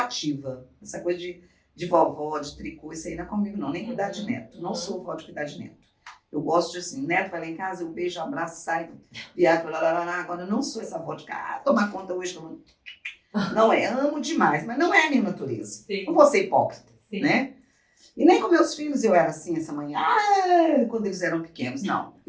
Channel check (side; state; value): both; identical; correlation 1.00